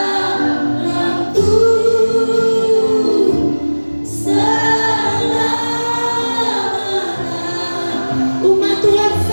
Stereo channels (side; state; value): both; inverted; correlation -1.00